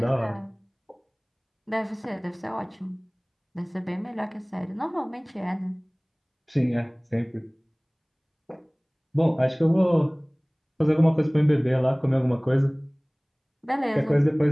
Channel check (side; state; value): both; identical; correlation 1.00